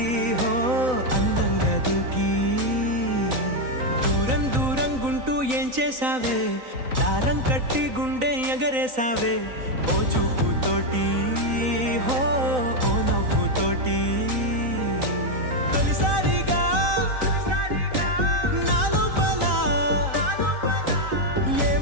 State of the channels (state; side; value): late; left; 3.9 ms